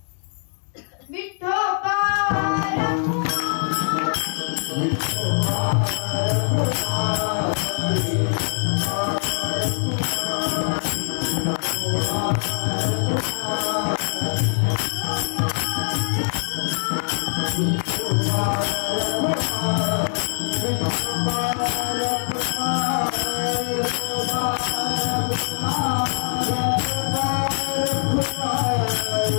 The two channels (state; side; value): silent; right; digital silence